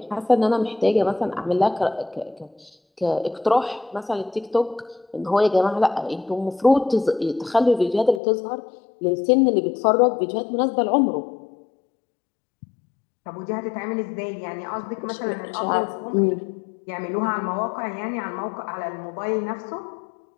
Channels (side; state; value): right; drops out; at 8.2 s